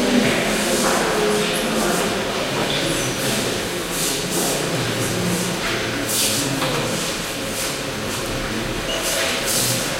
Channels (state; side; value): identical; both; correlation 1.00